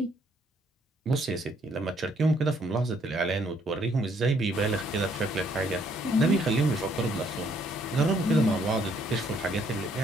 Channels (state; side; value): normal; both; correlation 0.67